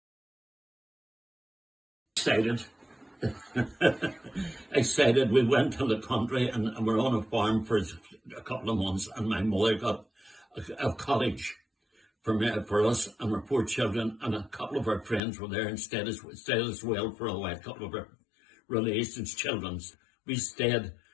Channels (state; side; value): drops out; right; at 15.2 s